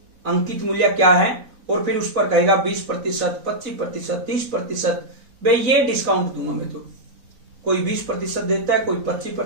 अंकित मूल्य क्या है, और फिर उस पर कहेगा 20%, 25%, 30%, भाई ये डिस्काउंट दूंगा मैं। तो कोई 20% देता है, कोई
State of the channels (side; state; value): left; late; 4.0 ms